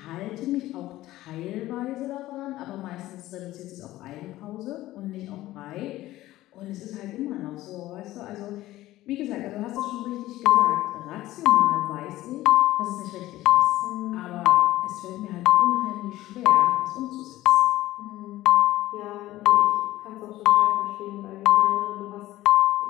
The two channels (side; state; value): right; quieter; 16.0 dB